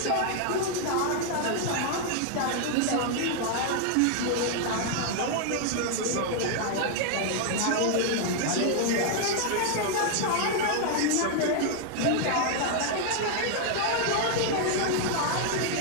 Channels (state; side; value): different; both; correlation 0.00